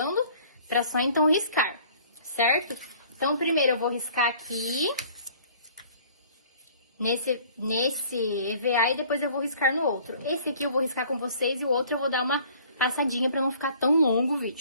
para só então riscar, certo? Então, primeiro eu vou riscar aqui, nesse EVA, e depois eu vou riscar no outro. Esse aqui eu vou riscar com vocês e o outro eu vou dar uma passadinha para não ficar tão longo o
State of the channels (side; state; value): both; inverted; correlation -0.53